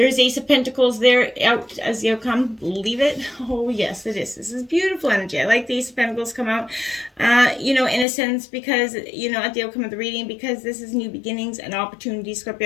Ace of Pentacles there out as the outcome. Leave it. Oh, yes, it is. This is beautiful energy. I like the Ace of Pentacles come out, in a sense, because, at the outcome of the reading, because this is new beginnings and opportunities,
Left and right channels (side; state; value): right; drops out; at 8.1 s